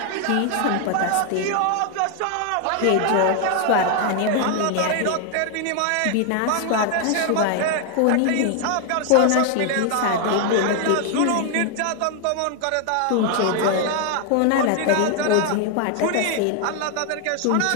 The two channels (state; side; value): different; both; correlation 0.01